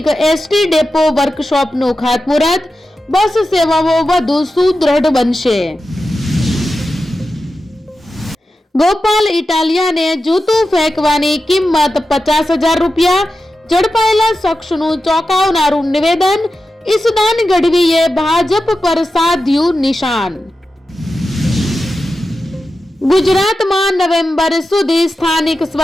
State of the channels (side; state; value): both; normal; correlation 0.92